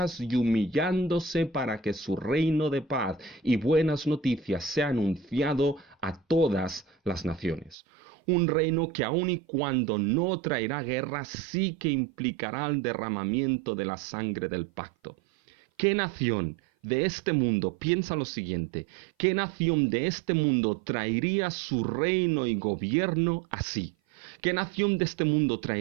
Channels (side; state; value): left; drops out; at 7.8 s